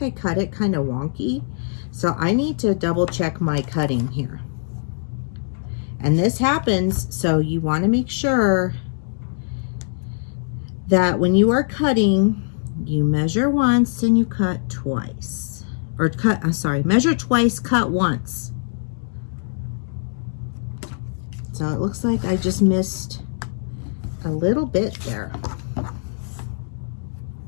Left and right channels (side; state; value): right; silent; digital silence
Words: I cut it kind of wonky, so I need to double check my cutting here. And this happens, so you want to make sure that when you are cutting, you measure once and you cut twice. Or measure twice, cut once. So it looks like I just missed a little bit there.